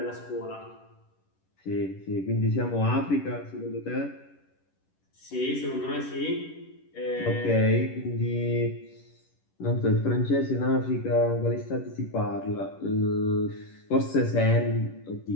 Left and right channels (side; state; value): right; late; 11 ms